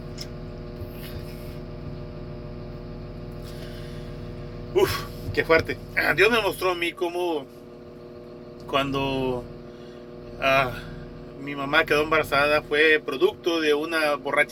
Uf, qué fuerte. Dios me mostró a mí cómo cuando mi mamá quedó embarazada fue producto de una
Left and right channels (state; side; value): identical; both; correlation 1.00